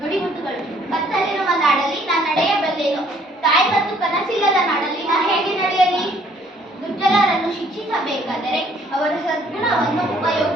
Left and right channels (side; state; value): both; normal; correlation 0.62